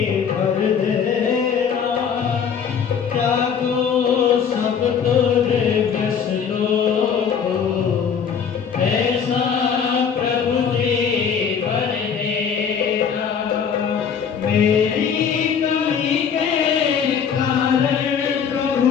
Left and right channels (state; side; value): quieter; right; 7.1 dB